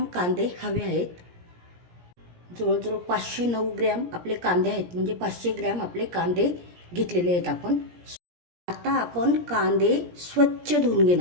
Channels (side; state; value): left; late; 17 ms